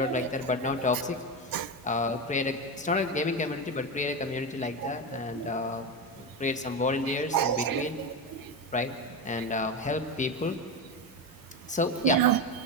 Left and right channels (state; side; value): normal; both; correlation 0.16